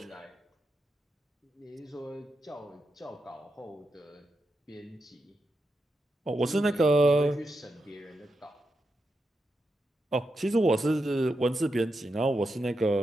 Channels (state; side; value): normal; both; correlation 0.86